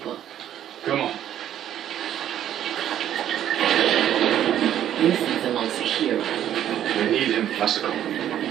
Come on. This is amongst the heroes. We need him, Masako.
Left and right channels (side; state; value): left; quieter; 11.0 dB